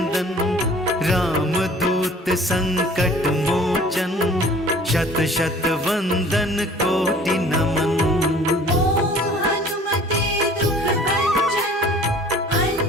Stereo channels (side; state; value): both; normal; correlation 0.50